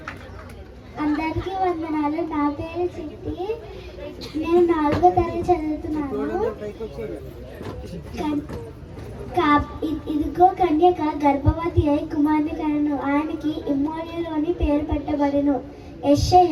అందరికీ వందనాలు. నా పేరు చిట్టి. నేను 4వ తరగతి చదువుతున్నాను. ఇదిగో కన్యక గర్భవతి అయి కుమారుని కనెను. ఆయనకి ఇమ్మోనియులు అని పేరు పెట్టబడెను.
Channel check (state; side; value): identical; both; correlation 1.00